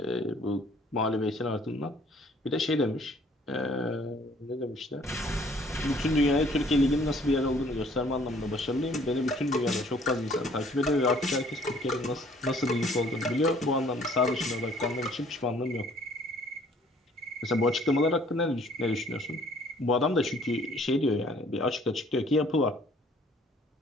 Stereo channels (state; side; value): normal; both; correlation 0.58